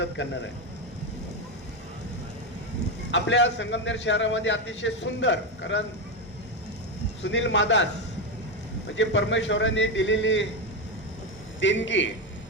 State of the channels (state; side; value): normal; both; correlation 0.10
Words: करणार आहे. आपल्या संगमनेर शहरामध्ये अतिशय सुंदर, कारण सुनील मादास म्हणजे परमेश्वराने दिलेली देणगी,